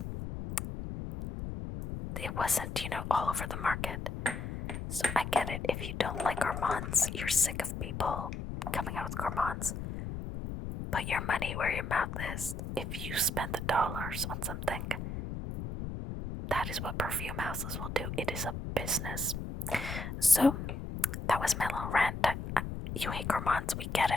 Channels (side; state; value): left; noise; rumble, 6 dB below the sound